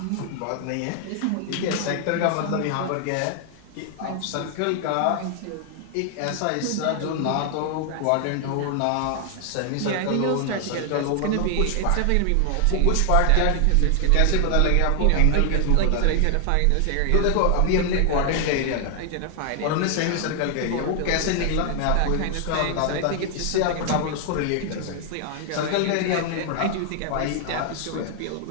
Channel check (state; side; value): different; both; correlation 0.00